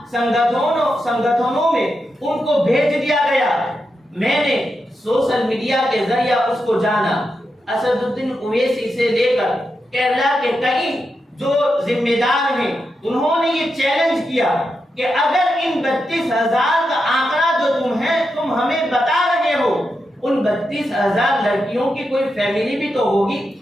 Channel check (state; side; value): normal; both; correlation 0.87